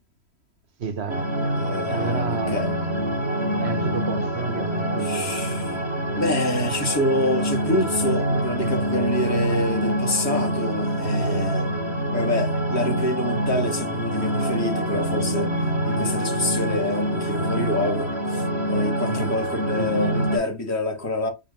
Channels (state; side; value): late; left; 3.1 ms